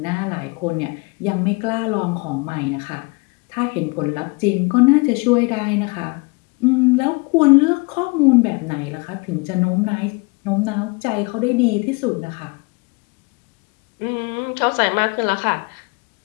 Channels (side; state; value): right; quieter; 29.0 dB